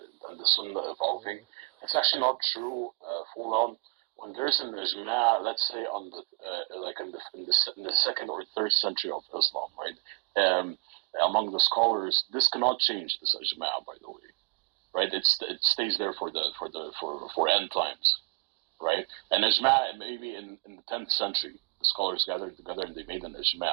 and the Sunnah evolving. It's actually not true, Fulan. When there's an Ijma, let's say on the like in the second or third century of Islam, right? Among the scholars, this cannot change, this Ijma, by the way, right? It stays there for end times, right? And Ijma, maybe in the 10th century, the scholars gathered together and they made an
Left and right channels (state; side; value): quieter; left; 32.1 dB